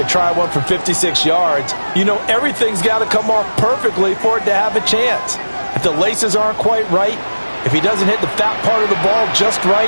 try one from 56 yards, you know everything's got to come off perfectly for it to have a chance. If the laces aren't quite right, if he doesn't hit the fat part of the ball just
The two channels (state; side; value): inverted; both; correlation -1.00